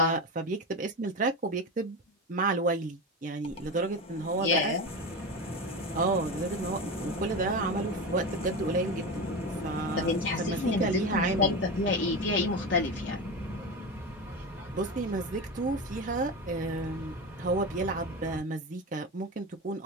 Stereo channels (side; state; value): both; normal; correlation 0.21